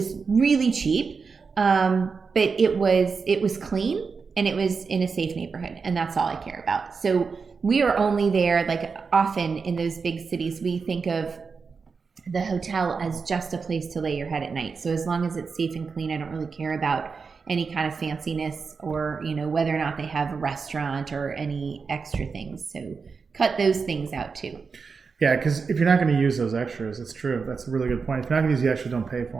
really cheap, but it was clean, and it was in a safe neighborhood, and that's all I care about. So we are only there, like often in those big cities, we think of the hotel as just a place to lay your head at night. So as long as it's safe and clean, I don't really care about any kind of fanciness or, whether or not they have a restaurant or any extra things. So cut those things out too. Yeah, because if you're not going to use those extras, it's true. That's a really good point. If you're not going to use the extras, don't pay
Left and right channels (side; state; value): left; quieter; 5.1 dB